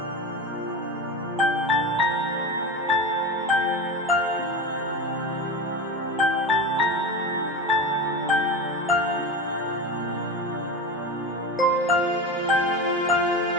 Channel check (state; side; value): normal; both; correlation 0.24